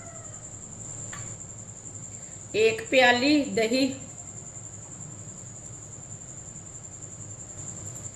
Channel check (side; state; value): both; identical; correlation 1.00